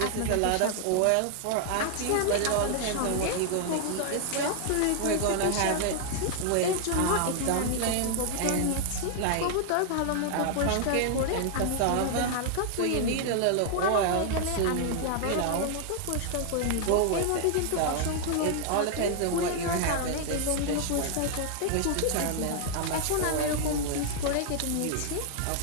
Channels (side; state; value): both; different; correlation 0.00